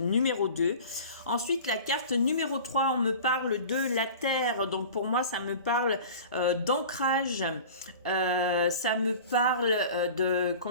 2. Ensuite, la carte numéro 3, on me parle de la Terre. Donc pour moi, ça me parle d'ancrage. Ça me parle de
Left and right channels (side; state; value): both; inverted; correlation -0.39